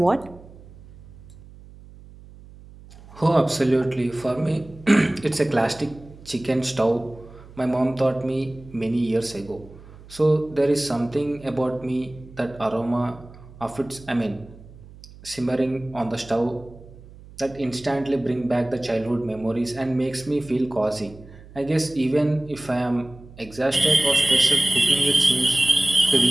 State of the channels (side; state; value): right; noise; hum, 20 dB below the sound